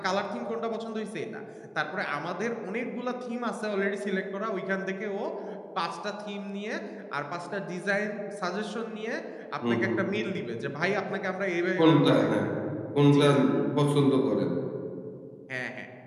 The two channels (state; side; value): identical; both; correlation 1.00